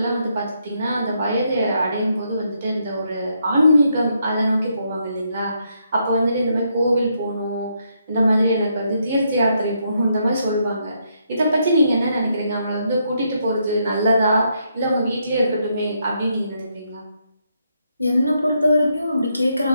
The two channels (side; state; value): both; inverted; correlation -0.77